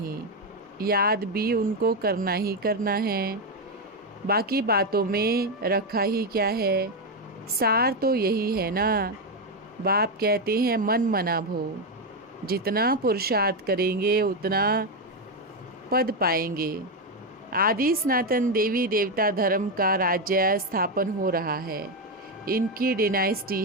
याद भी उनको करना ही करना है। बाकी बातों में रखा ही क्या है। सार तो यही है ना। बाप कहते हैं मन मना भो। जितना पुरुषार्थ करेंगे उतना पद पाएंगे। आदि सनातन देवी देवता धर्म का राज्य स्थापन हो रहा है। इनकी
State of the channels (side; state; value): both; normal; correlation 0.07